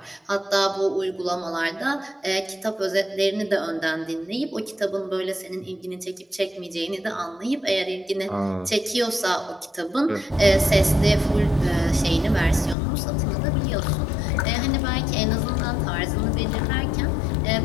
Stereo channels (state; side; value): drops out; right; at 12.8 s